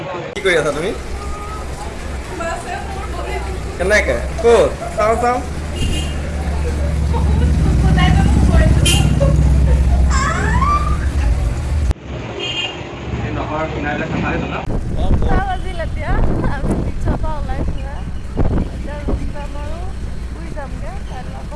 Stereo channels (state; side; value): identical; both; correlation 1.00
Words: কি কৰি আছা তুমি? কেনেকে? ক'ত? চাওঁ চাওঁ। বাজিল এতিয়া আমি